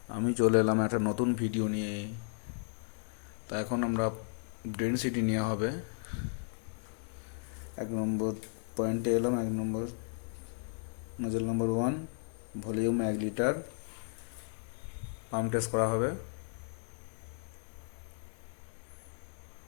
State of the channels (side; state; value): right; silent; 55 dB below the other